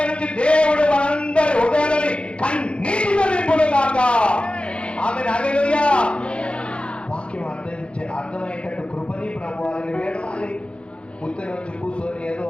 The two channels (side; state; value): right; late; 0.058 ms